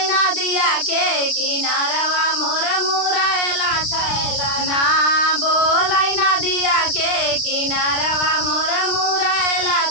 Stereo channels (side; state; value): right; late; 36 ms